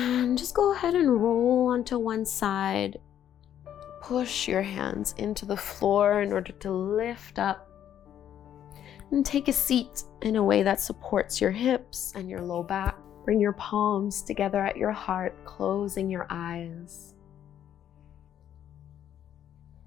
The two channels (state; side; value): quieter; right; 10.3 dB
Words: just go ahead and roll onto one side. Push your hands into the floor in order to lift up. And take a seat in a way that supports your hips and your low back. Bring your palms together at your heart, closing your eyes.